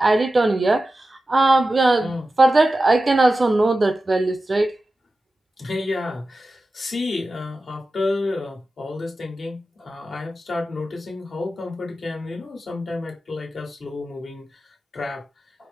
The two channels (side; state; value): both; normal; correlation 0.93